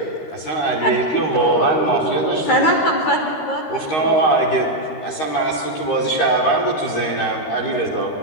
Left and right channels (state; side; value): late; right; 13 ms